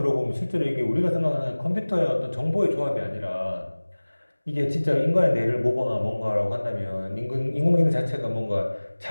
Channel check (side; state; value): both; inverted; correlation -1.00